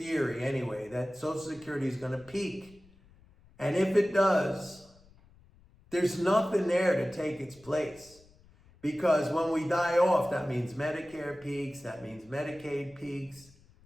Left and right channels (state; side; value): noise; left; rumble, 27 dB below the sound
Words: anyway, that Social Security is going to peak, and if it does, there's nothing there to take its place, because when we die off, that means Medicare peaks, that means Medicaid peaks.